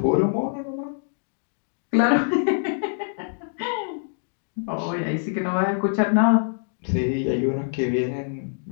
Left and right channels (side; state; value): right; silent; 60 dB below the other